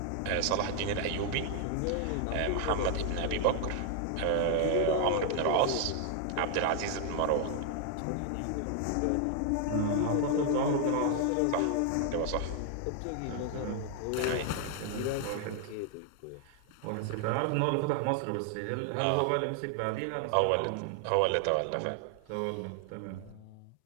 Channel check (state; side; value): different; both; correlation 0.00